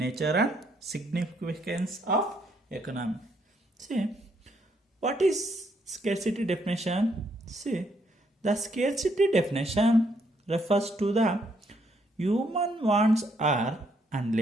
and Significance of Economics. See, what is scarcity definition? See, the scarcity definition refers to the human wants are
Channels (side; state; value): both; normal; correlation 0.72